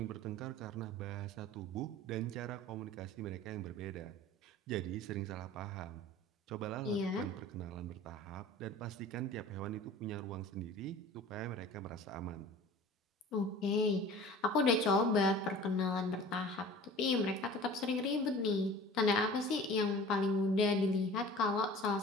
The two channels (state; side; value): normal; both; correlation 0.42